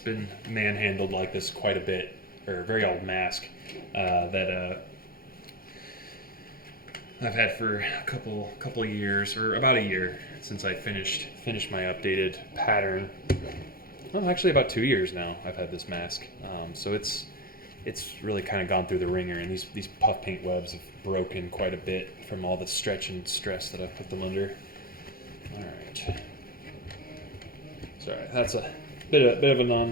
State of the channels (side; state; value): right; late; 0.43 ms